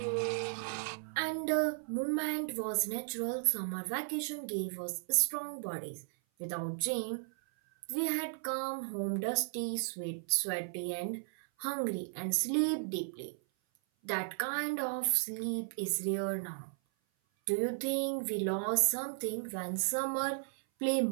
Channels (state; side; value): silent; left; 54 dB below the other